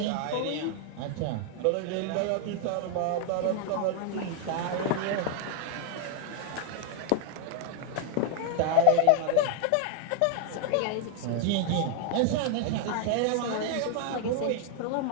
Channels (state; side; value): different; both; correlation 0.00